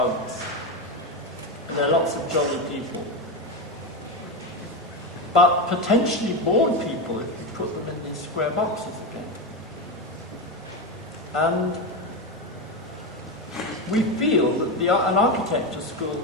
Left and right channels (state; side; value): normal; both; correlation 0.14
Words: And there are lots of jolly people. But potentially bored people if you put them in these square boxes again. And we feel that an architecture school